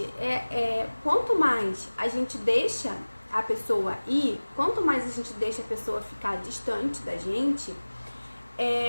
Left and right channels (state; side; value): inverted; both; correlation -1.00